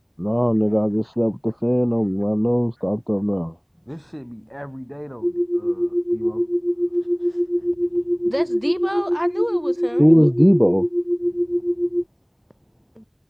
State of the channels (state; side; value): identical; both; correlation 1.00